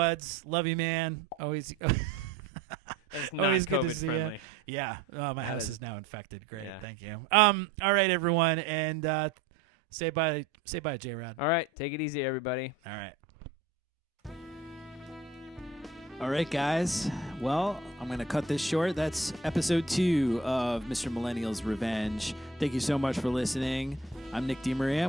Love you, man. Always. That's not always good to COVID see friendly. you. Yeah. My house is now infected. Great. Yeah. Thank you. All right, everyone. And say bye, Jerrod. All right. Take it easy, everybody. All right. All right, guys. Well, I'm going to cut this short. That's episode 2 of Mr. Millennial's Revenge. Thank you so much for listening. I'm Nick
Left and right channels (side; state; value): left; quieter; 3.4 dB